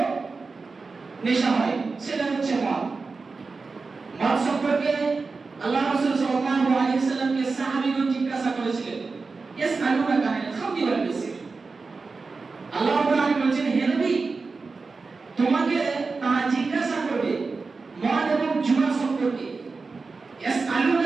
নেশা হয়, সেটা হচ্ছে মদ। মদ সম্পর্কে আল্লাহ রাসূল সাল্লাল্লাহু আলাইহি ওয়াসাল্লামকে সাহাবীগণ জিজ্ঞাসা করেছিলেন, ইয়াসআলুনাকা আনিল খামরি ওয়াল মাইসির। আল্লাহ রাব্বুল আলামিন বলেছেন, হে নবী, তোমাকে তারা জিজ্ঞাসা করবে মদ এবং জুয়া সম্পর্কে।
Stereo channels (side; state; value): left; quieter; 4.2 dB